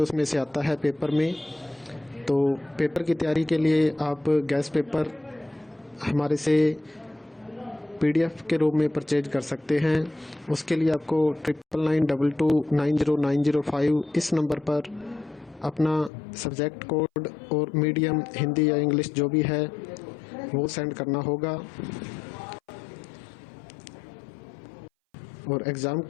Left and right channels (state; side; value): drops out; right; at 16.1 s